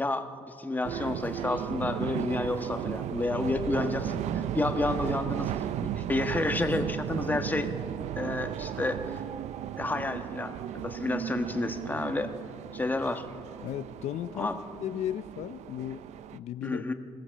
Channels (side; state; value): both; normal; correlation 0.68